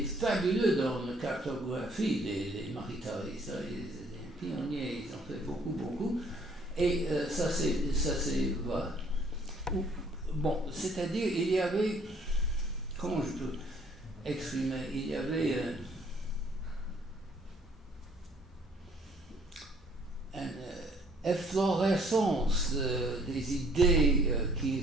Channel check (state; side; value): normal; both; correlation 0.61